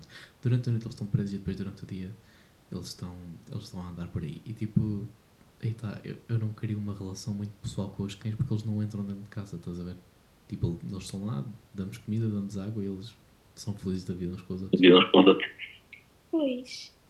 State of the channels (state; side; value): identical; both; correlation 1.00